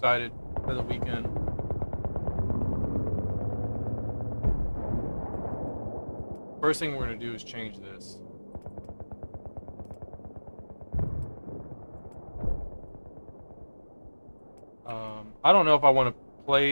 for the weekend. First thing we're gonna do is change this. I don't know if I want to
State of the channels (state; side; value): inverted; both; correlation -1.00